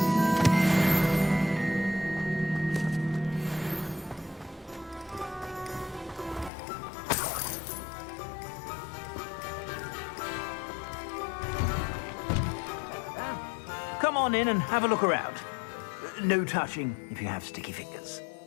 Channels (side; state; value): right; drops out; at 6.5 s